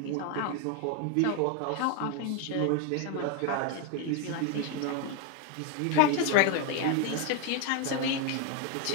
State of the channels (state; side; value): different; both; correlation 0.01